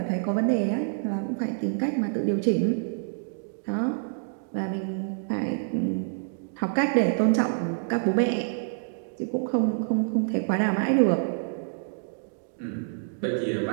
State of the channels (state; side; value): silent; left; digital silence